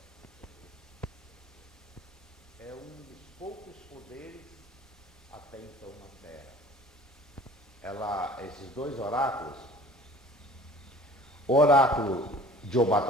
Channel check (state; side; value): normal; both; correlation 0.48